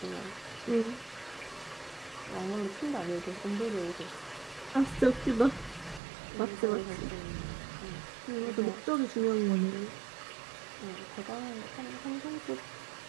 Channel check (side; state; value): left; drops out; at 6.0 s